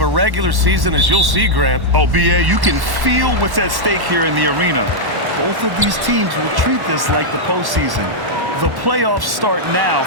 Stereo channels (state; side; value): late; left; 1.1 ms